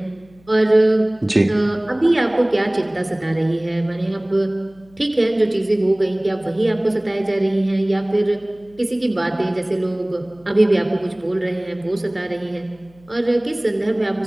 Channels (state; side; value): noise; left; hum, 28 dB below the sound